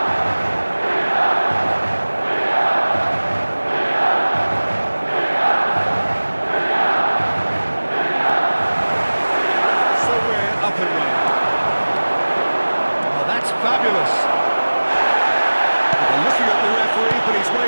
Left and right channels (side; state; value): both; inverted; correlation -1.00